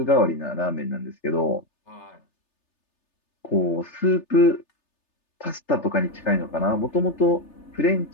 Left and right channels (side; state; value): right; late; 3.3 ms